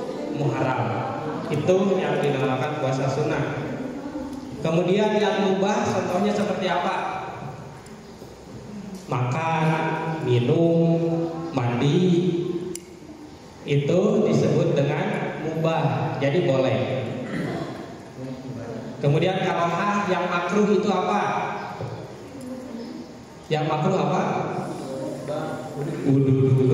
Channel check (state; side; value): identical; both; correlation 1.00